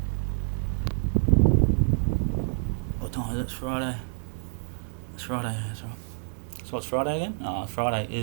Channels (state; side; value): silent; left; digital silence